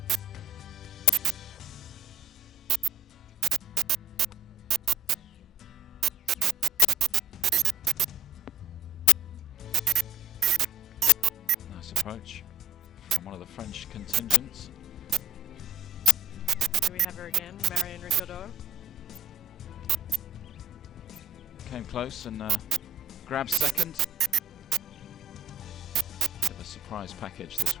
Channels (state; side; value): normal; both; correlation 0.49